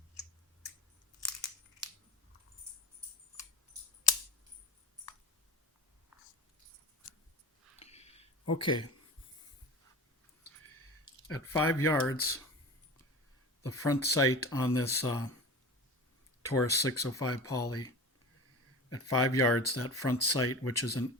Okay, at 5 yards, the front sight on this Taurus 605 poly, at 5 yards, that front sight, which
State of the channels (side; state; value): both; normal; correlation 0.33